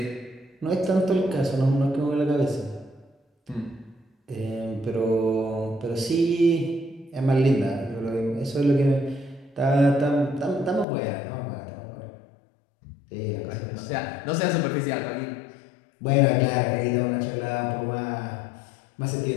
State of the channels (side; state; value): right; drops out; at 10.9 s